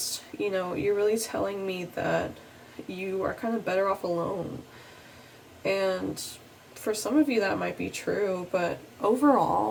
you know, you're really telling me that you are kind of better off alone. And for some of you that might be true, but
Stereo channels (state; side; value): identical; both; correlation 1.00